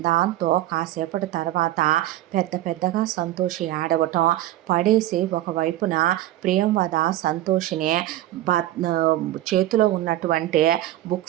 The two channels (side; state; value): left; quieter; 14.6 dB